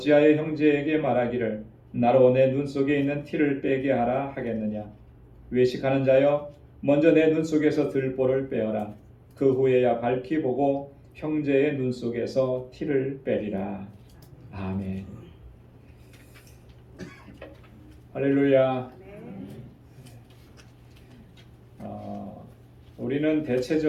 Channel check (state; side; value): identical; both; correlation 1.00